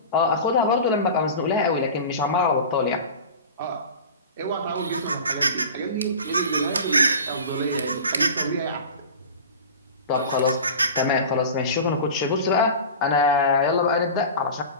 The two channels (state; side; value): inverted; both; correlation -0.34